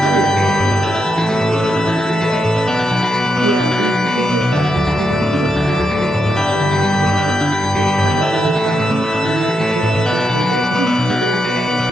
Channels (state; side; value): normal; both; correlation 0.84